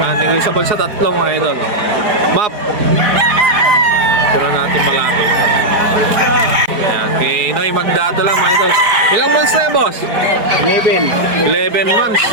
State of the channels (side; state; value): left; late; 4.6 ms